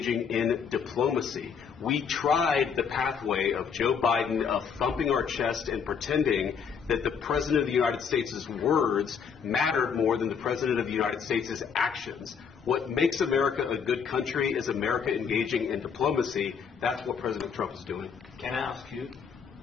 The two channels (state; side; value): quieter; right; 6.6 dB